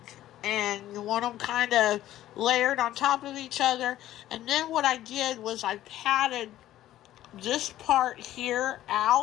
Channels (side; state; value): right; quieter; 13.6 dB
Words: And you want them kind of layered on top of each other. And then what I did was I patted this part here